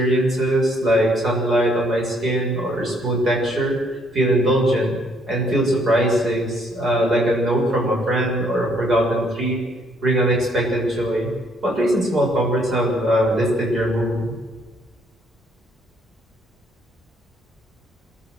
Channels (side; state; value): both; normal; correlation 0.67